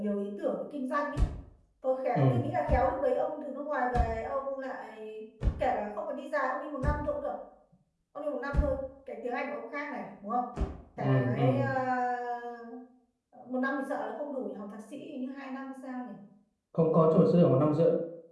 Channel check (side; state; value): both; identical; correlation 1.00